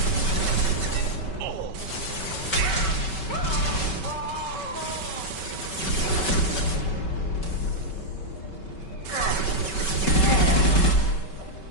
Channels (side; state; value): right; late; 5.3 ms